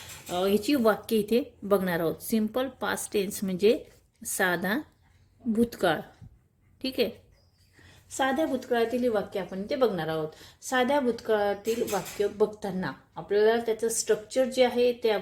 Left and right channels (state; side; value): identical; both; correlation 1.00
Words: ह्याची वाक्य इथे बघणार आहोत. सिंपल पास्ट टेन्स म्हणजे साधा भूतकाळ. ठीक आहे, साध्या भूतकाळातील ही वाक्य आपण इथे बघणार आहोत. साध्या भूतकाळातील वाक्य बघताना आपल्याला त्याचं स्ट्रक्चर जे आहे ते